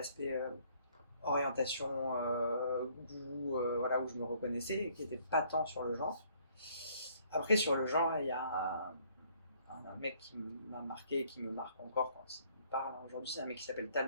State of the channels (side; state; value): both; inverted; correlation -0.63